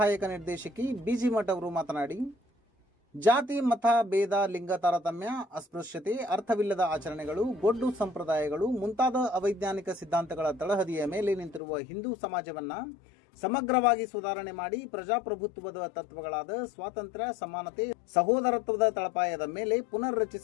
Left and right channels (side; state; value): right; drops out; at 11.6 s